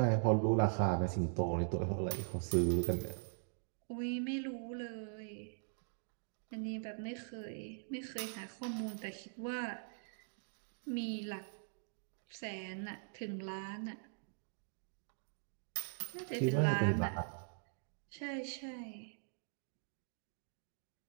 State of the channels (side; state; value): left; silent; digital silence